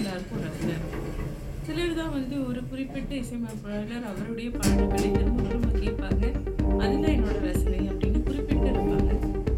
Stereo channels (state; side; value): identical; both; correlation 1.00